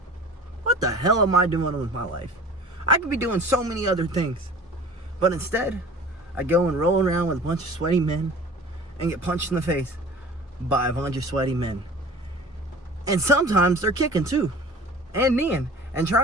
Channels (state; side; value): normal; both; correlation 0.42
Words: what the hell am I doing with my life? I could be doing so many other things, but instead, I go and roll around with a bunch of sweaty men and get punched in the face by a bunch of sweaty men. And sometimes they're kicking too, and kneeing, and